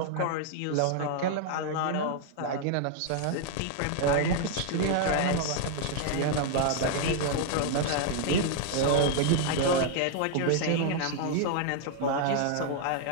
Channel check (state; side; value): different; both; correlation 0.00